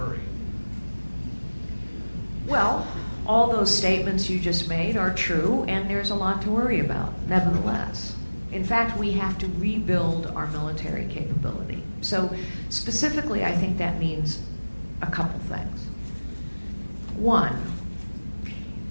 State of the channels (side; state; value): both; inverted; correlation -1.00